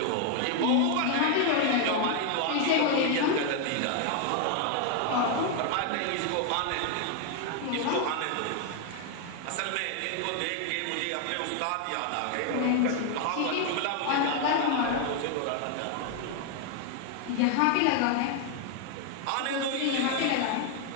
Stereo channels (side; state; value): both; different; correlation 0.01